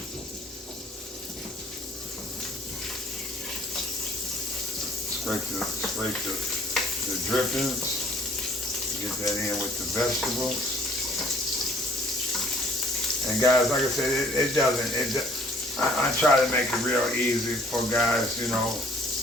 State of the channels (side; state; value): both; normal; correlation 0.57